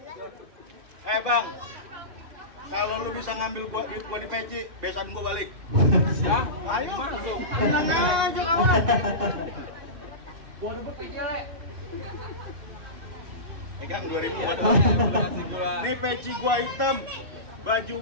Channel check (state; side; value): late; left; 2.7 ms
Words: Bang, kalau lu bisa ngambil duit gua di peci, besan gua balik. Ayo masuk. Tenang aja kawan. Gua rebut aja, Le. Pegang 2000 buat lu. Nih peci gua hitam, baju